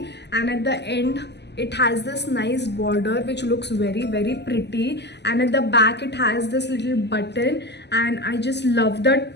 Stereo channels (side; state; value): right; late; 0.50 ms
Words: and at the end it has this nice border which looks very pretty, and at the back it has this little button. And I just love the